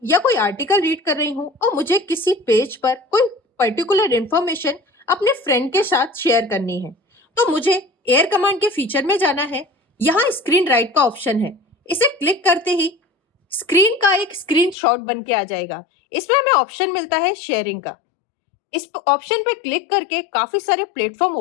या कोई आर्टिकल रीड कर रही हूँ और मुझे किसी पेज पर कोई पर्टिकुलर इंफॉर्मेशन अपने फ्रेंड के साथ शेयर करनी है, तो मुझे एयर कमांड के फीचर में जाना है। यहाँ स्क्रीन राइट का ऑप्शन है, इसे क्लिक करते ही स्क्रीन का एक स्क्रीनशॉट बन के आ जाएगा। इसमें हमें ऑप्शन मिलता है शेयरिंग का। इस ऑप्शन पे क्लिक करके काफी सारे प्लेटफॉर्म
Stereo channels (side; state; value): right; drops out; at 14.8 s